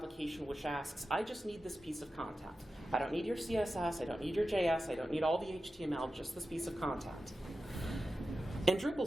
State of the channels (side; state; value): both; normal; correlation 0.92